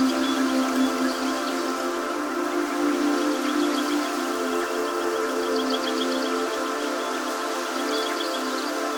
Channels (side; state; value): both; identical; correlation 1.00